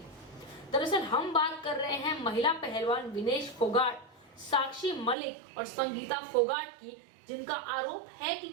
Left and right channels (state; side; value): drops out; left; at 5.2 s